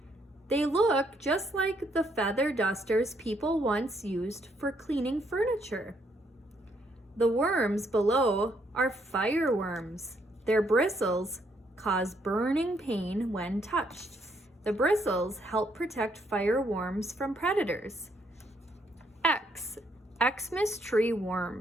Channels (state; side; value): normal; both; correlation 0.72